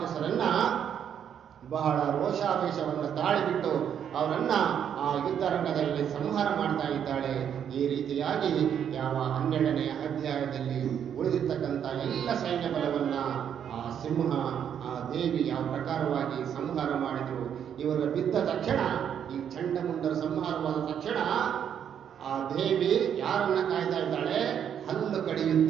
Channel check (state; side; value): quieter; left; 8.7 dB